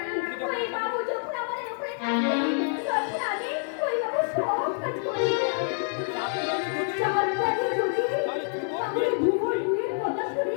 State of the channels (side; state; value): right; silent; 60 dB below the other